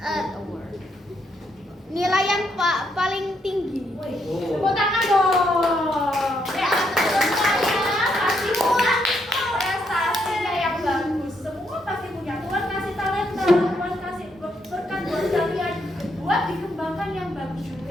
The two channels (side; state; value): both; normal; correlation 0.76